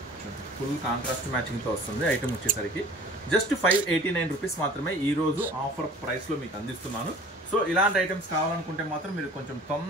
ఫుల్ కాంట్రాస్ట్ మ్యాచింగ్తో వస్తుంది ఐటమ్ వచ్చేసరికి. జస్ట్ 589 రూపీస్ మాత్రమే ఈ రోజు ఆఫర్ ప్రైస్లో మీకు అందిస్తున్నాను. సో ఇలాంటి ఐటమ్స్ కావాలనుకుంటే మాత్రం మీరు కొంచెం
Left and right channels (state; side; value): normal; both; correlation 0.46